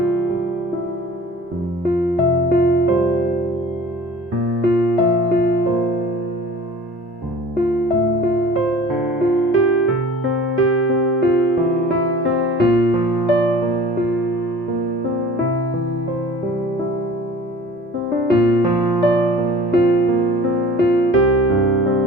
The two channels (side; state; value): both; normal; correlation 0.44